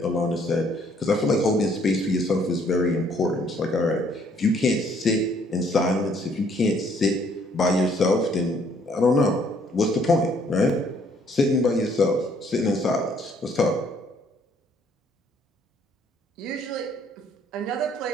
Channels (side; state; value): both; normal; correlation 0.64